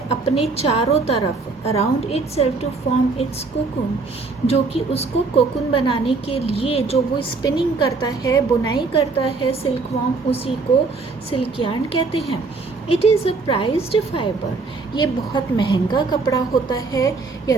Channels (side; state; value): left; quieter; 4.1 dB